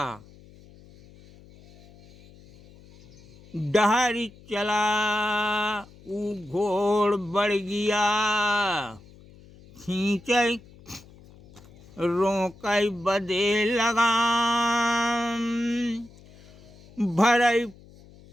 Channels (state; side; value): noise; left; hum, 24 dB below the sound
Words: डहरी चला ऊ घोड़ बढ़ गया, खींचई रोकई बदे लगाम, भरई